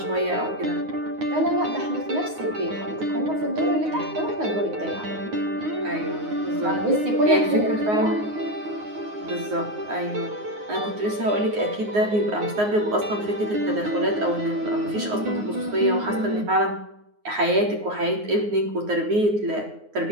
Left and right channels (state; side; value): late; left; 9.6 ms